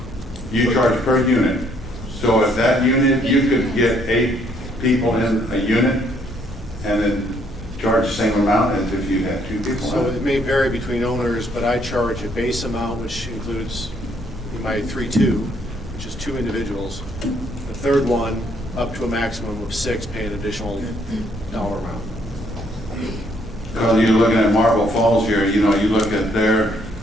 You charge per unit. So if that unit, you could get 8 people in a unit and then charge the same amount as if you had 2 people. So it may vary between owners, but I charge a base amount, which includes my 3-2, which is 2 individuals. The third one, up to a maximum of 6, pay an additional dollar amount. Because you're looking at Marble Falls here, you look at their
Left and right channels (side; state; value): both; normal; correlation 0.68